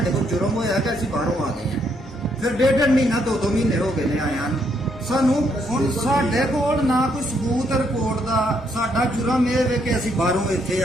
ਕੋਲ ਜੁਰਮ ਹੋਇਆ ਕਿ ਅਸੀਂ ਬਾਹਰੋਂ ਆ ਗਏ ਹਾਂ। ਫਿਰ 1.5 ਮਹੀਨਾ 2-2 ਮਹੀਨੇ ਹੋ ਗਏ ਨੇ ਆਇਆਂ ਨੂੰ। ਸਾਨੂੰ ਹੁਣ ਸਾਡੇ ਕੋਲ ਨਾ ਕੋਈ ਸਬੂਤ ਰਿਪੋਰਟ ਦਾ। ਸਾਡਾ ਜੁਰਮ ਇਹ ਵੇ ਕਿ ਅਸੀਂ ਬਾਹਰੋਂ ਇੱਥੇ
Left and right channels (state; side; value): normal; both; correlation 0.73